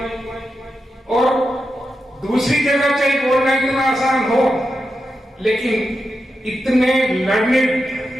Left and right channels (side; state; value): both; normal; correlation 0.88